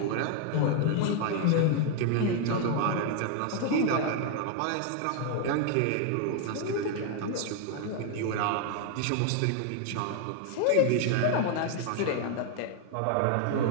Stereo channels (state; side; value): different; both; correlation 0.00